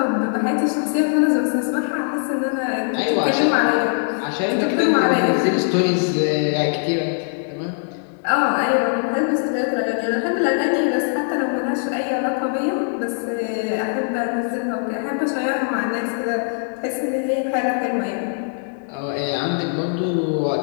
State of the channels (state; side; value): silent; right; 62 dB below the other